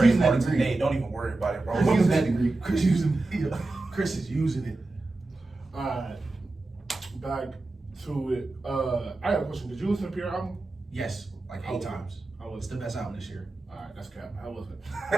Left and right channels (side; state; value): left; quieter; 3.1 dB